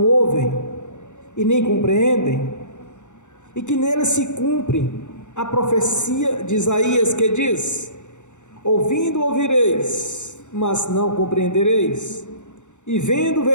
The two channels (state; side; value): late; right; 0.84 ms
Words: ouvem, e nem compreendem, e que neles se cumpre a profecia de Isaías que diz: ouvindo ouvireis, mas não compreendereis, e vendo